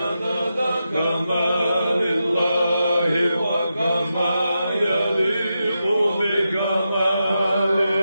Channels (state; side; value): inverted; both; correlation -0.88